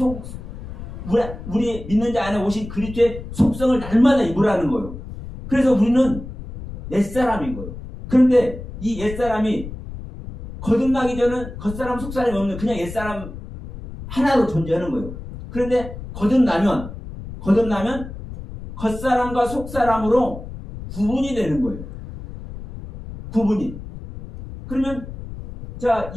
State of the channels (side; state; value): left; noise; rumble, 11 dB below the sound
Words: 우리 믿는 자 안에 오신 그리스도의 속성을 날마다 입으라는 거예요. 그래서 우리는 옛사람인 거예요. 그런데 이 옛사람이 거듭나기 전은 겉사람 속사람이 없는 그냥 옛사람 하나로 존재하는 거예요. 그런데 거듭나면 겉사람과 속사람으로 구분이 되는 거예요. 구분이. 그러면 자,